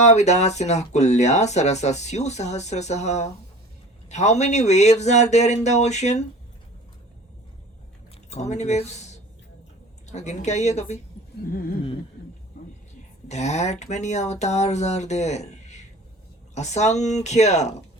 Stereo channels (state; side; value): normal; both; correlation 0.42